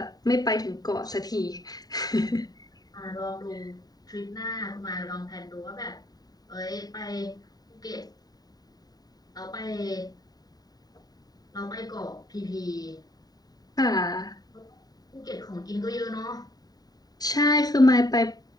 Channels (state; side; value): late; right; 0.18 ms